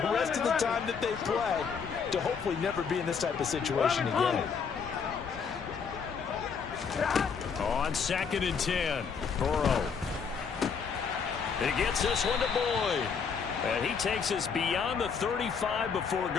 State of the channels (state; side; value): quieter; right; 6.1 dB